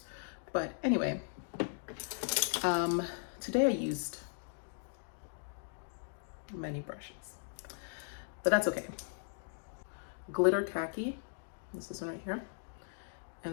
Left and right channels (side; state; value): right; silent; digital silence